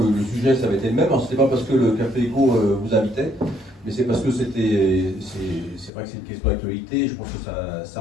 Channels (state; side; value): drops out; right; at 5.9 s